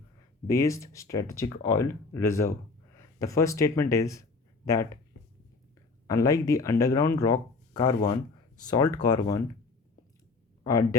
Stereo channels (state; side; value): quieter; right; 4.0 dB